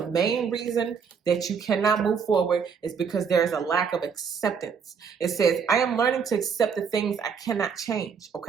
main reason that you cannot move forward is because there is a lack of acceptance. It says, I am learning to accept the things I cannot change,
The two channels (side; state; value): left; quieter; 6.3 dB